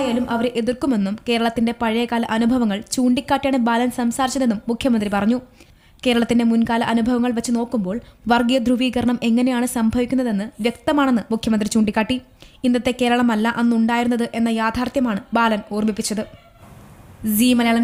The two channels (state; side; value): identical; both; correlation 1.00